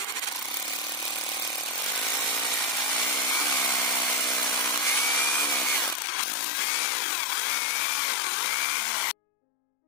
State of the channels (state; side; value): drops out; right; at 6.0 s